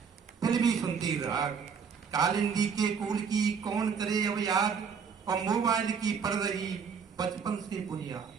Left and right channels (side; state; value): left; quieter; 6.3 dB